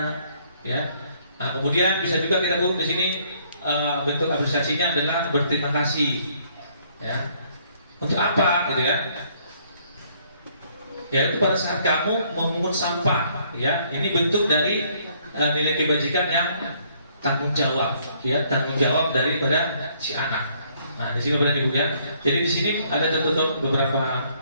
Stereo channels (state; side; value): inverted; both; correlation -0.65